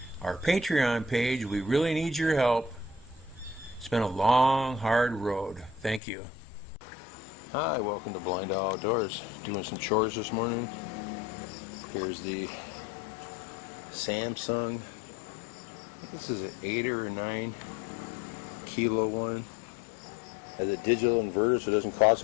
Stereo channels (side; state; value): right; drops out; at 6.0 s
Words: our Patreon page? We really need your help. It's been a long, hard road. Thank you. Hi, welcome to BlindOwl Outdoors. Doing some chores this morning. Here's the Samsung. This is an 8 or 9 kilo one. Has a digital inverter, so it doesn't cost